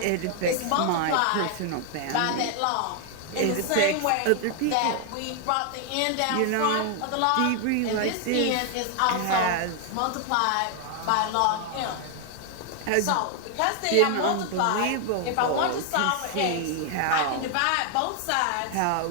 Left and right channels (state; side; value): different; both; correlation 0.00